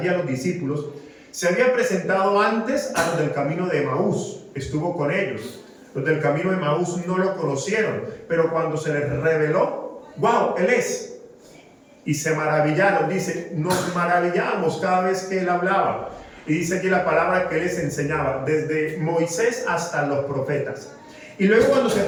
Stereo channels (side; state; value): both; identical; correlation 1.00